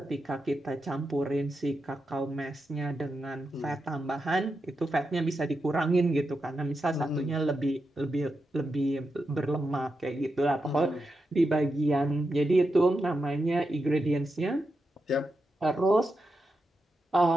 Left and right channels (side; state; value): both; normal; correlation 0.87